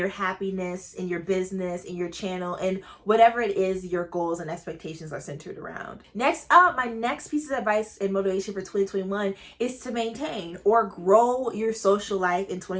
happiness, in your business, in your channel, and whatever it is your goals and expectations are centered around. Next up, my next piece of advice and motivation for 2021 is to maintain or grow your social life in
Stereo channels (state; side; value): identical; both; correlation 1.00